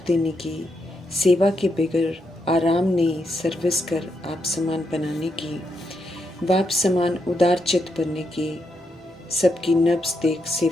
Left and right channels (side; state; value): both; normal; correlation 0.81